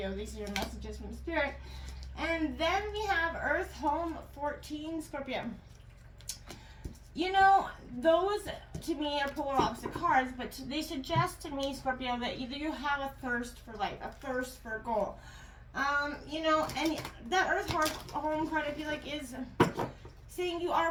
These are your messages from Spirit. And then we have Earth Home 14, Scorpio. You know, those to me are polar opposite cards, but they suggest to me, Scorpio, that either you have a thirst for life, a thirst for a goal. You know, and that Earth Home card, I feel like, is saying you are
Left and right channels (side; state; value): both; identical; correlation 1.00